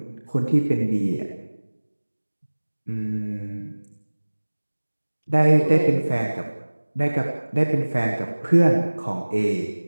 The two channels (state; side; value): inverted; both; correlation -1.00